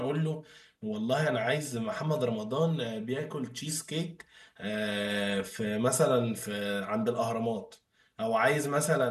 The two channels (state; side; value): identical; both; correlation 1.00